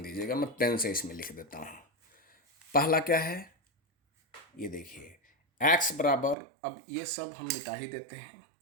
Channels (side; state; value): left; drops out; at 6.4 s